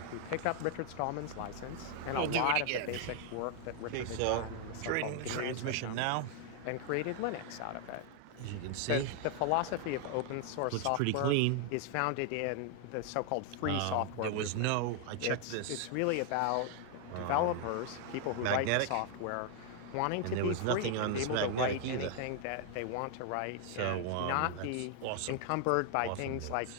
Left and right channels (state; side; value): different; both; correlation 0.00